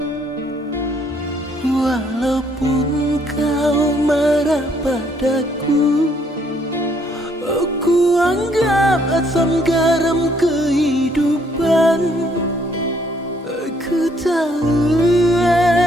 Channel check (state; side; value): normal; both; correlation 0.67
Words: Walaupun kau marah padaku, ku anggap asam garam kehidupan. Ku tahu